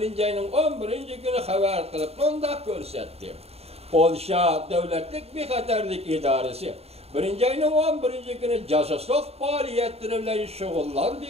ayının 11. günü haber kılıp onda görsetti. Polşa Devletlik Bexaterlik İdaresi 1. ayının 11. günü casusluk faaliyetleri bilen şugullandı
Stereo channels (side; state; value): left; late; 0.30 ms